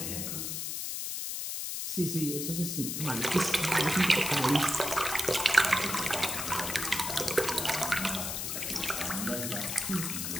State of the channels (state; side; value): noise; left; hiss, 3 dB below the sound